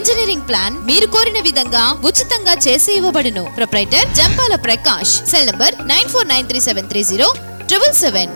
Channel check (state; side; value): inverted; both; correlation -1.00